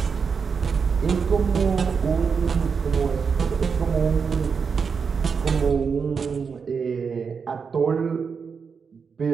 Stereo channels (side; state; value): left; quieter; 5.8 dB